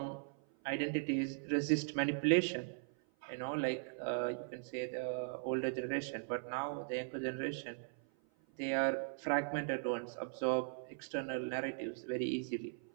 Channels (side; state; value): left; silent; 52 dB below the other